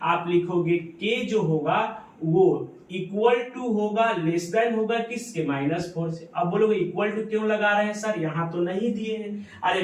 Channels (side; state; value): both; identical; correlation 1.00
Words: आप लिखोगे के जो होगा वो इक्वल टू होगा, लेस देन होगा किसके, -4 से। अब बोलोगे इक्वल टू क्यों लगा रहे हैं सर, यहाँ तो नहीं दिए हैं। अरे